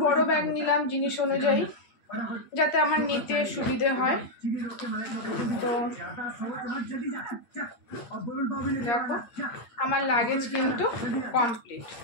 বড় ব্যাগ নিলাম জিনিস অনুযায়ী, যাতে আমার নিতে সুবিধে হয়। তো দেখো আমার লাগেজ কিন্তু কমপ্লিট,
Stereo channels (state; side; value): late; right; 8.5 ms